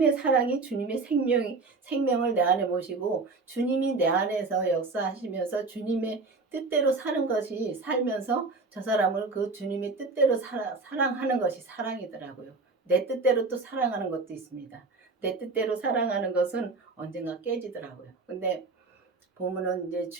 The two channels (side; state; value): left; quieter; 3.8 dB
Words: 사랑이 주님의 생명을 내 안에 모시고 주님이 내 안에서 역사하시면서 주님의 뜻대로 사는 것이, 살면서 저 사람을 그 주님의 뜻대로 사랑하는 것이 사랑이더라고요. 내 뜻대로 또 사랑하는 것도 있습니다. 내 뜻대로 사랑하는 것은 언젠가 깨지더라고요. 근데 보면은 이제